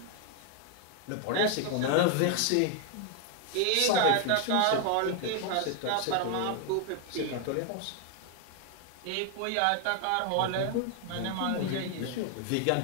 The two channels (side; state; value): both; different; correlation 0.00